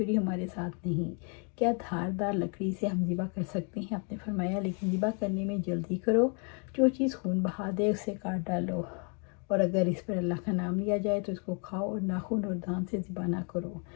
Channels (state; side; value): quieter; right; 37.8 dB